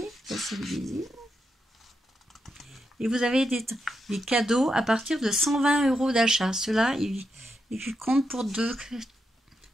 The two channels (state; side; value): normal; both; correlation 0.84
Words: ça c'est le visible. Et vous avez des cadeaux à partir de 120 € d'achat. Ceux-là, ils comptent pour deux